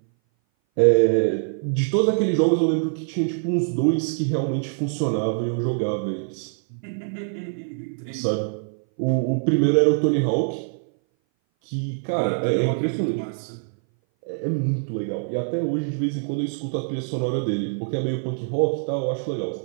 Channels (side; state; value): left; silent; 59 dB below the other